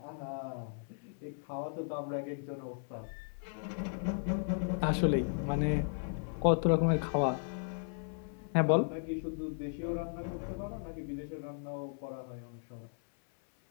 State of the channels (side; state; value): right; silent; 54 dB below the other